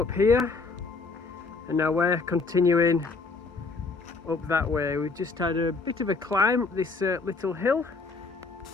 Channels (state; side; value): quieter; right; 4.2 dB